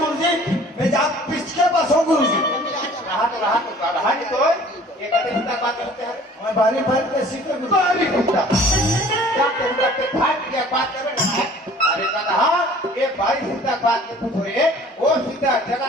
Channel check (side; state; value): both; normal; correlation 0.50